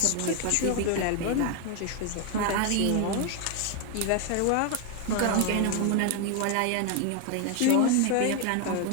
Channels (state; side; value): different; both; correlation 0.01